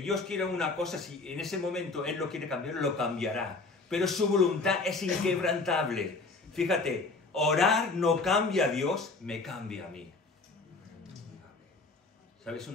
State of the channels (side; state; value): right; quieter; 3.8 dB